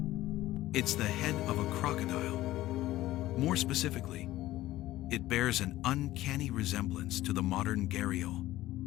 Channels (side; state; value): right; quieter; 15.8 dB